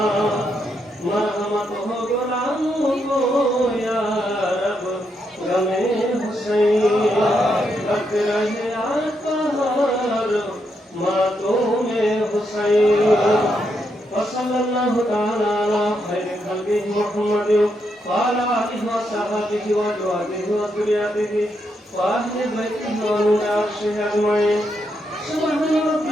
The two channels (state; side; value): normal; both; correlation 0.80